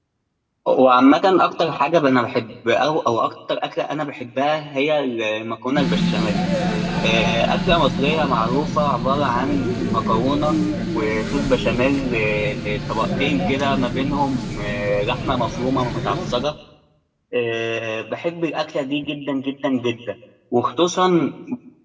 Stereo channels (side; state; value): both; identical; correlation 1.00